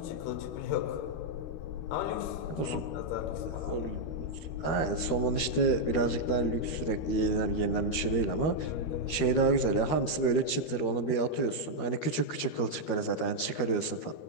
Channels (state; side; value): late; right; 13 ms